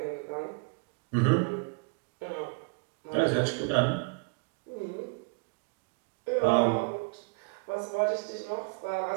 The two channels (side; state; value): left; quieter; 33.2 dB